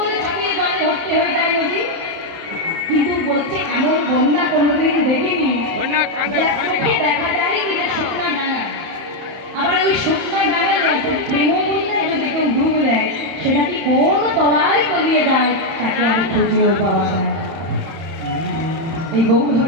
থেকে জলে ভর্তি হয়ে যায় নদী কিন্তু বলছে এমন বন্যা কোনোদিন দেখিনি যাকে দেখা যায় কিন্তু শুকনা ডাঙা আবার ওই শুকনা ডাঙায় প্রেম বন্যায় যদি কেউ ডুব দেয় সেটা কি কোন তলায় তলিয়ে যায় তাকে আর খুঁজেও পাওয়া যায় এই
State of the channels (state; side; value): late; left; 31 ms